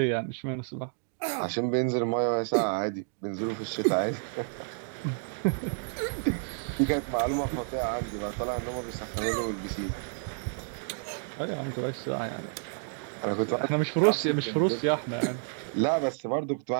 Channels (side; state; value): left; silent; 58 dB below the other